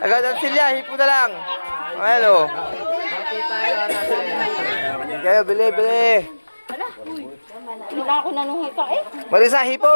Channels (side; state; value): both; inverted; correlation -1.00